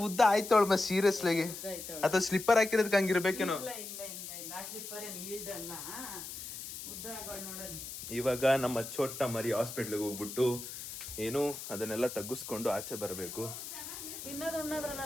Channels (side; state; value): left; noise; hiss, 9 dB below the sound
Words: ಉದ್ದ ಆಯ್ತವಳು ಮ ಸೀರಿಯಸ್ಲಾಗಿ? ಅಥವಾ ಸ್ಲಿಪ್ಪರ್ ಹಾಕಿರೋದಕ್ಕೆ ಹಂಗಿರ್ಬೇಕೇನೋ. ಇವಾಗ ನಮ್ಮ ಚೋಟ ಮರಿ ಹಾಸ್ಪಿಟ್ಲಿಗೆ ಹೋಗ್ಬಿಟ್ಟು ಏನು ಅದನ್ನೆಲ್ಲ ತಗ್ಗಿಸ್ಕೊಂಡು ಆಚೆ ಬರಬೇಕು.